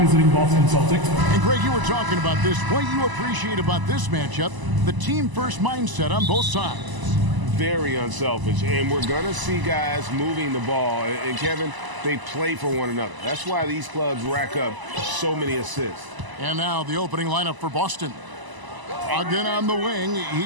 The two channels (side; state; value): left; late; 1.0 ms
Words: Boston Celtics. And Greg, you were talking about this. What you appreciate about this matchup, the team-first mindset on both sides. Very unselfish, and we're going to see guys moving the ball. And Kevin, they play for one another. That's why these clubs rack up so many assists. And now the opening lineup for Boston. Again on the wing,